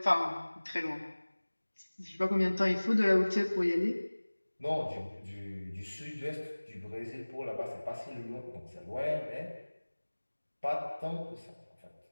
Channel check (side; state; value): both; inverted; correlation -1.00